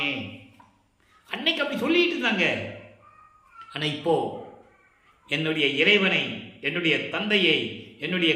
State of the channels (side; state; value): both; identical; correlation 1.00